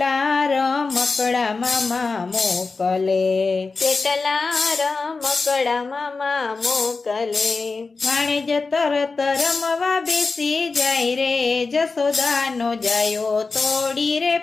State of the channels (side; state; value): right; quieter; 4.1 dB